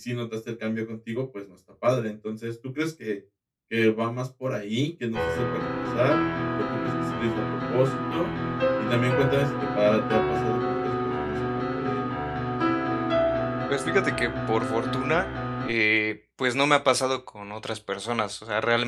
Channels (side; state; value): both; identical; correlation 1.00